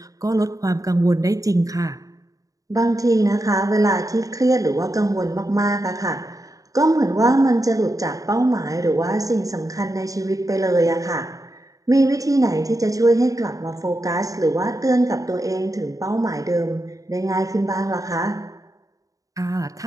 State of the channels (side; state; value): left; late; 0.17 ms